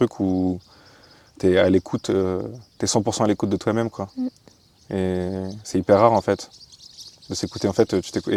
où tu es à l'écoute, tu es 100% à l'écoute de toi-même, quoi. Mm. Et c'est hyper rare en fait de s'écouter. En fait,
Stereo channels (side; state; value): both; identical; correlation 1.00